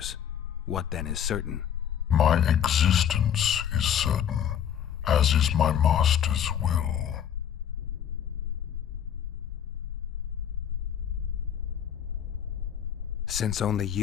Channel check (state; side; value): quieter; right; 9.1 dB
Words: What then is certain? My existence is certain, as is my master's will. Since only